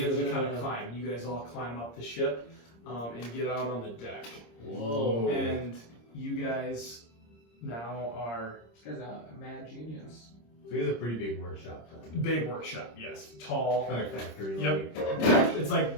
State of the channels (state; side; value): late; right; 26 ms